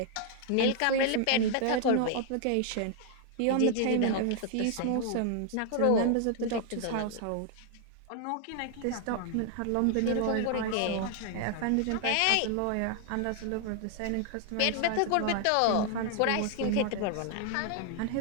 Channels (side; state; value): both; different; correlation 0.00